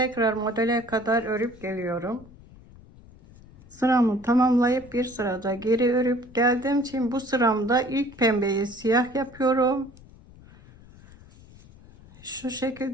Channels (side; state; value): left; noise; rumble, 22 dB below the sound